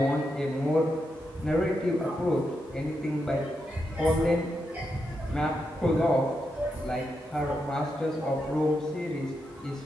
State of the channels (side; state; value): both; normal; correlation 0.85